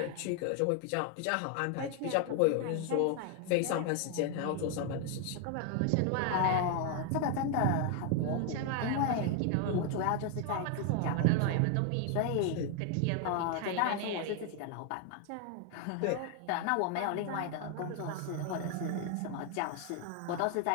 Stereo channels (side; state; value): both; different; correlation 0.00